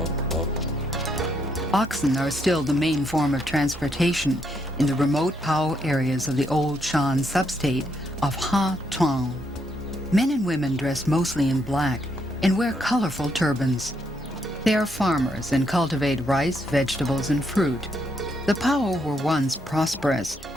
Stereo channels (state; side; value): normal; both; correlation 0.76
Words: Oxen are still the main form of transportation in the remote Pao areas of the old Shan substate of Ha Tuong. Men and women dress mostly in black and wear colorful turbans. They are farmers and cultivate rice, vegetables, and fruit. The Pao were once prosperous,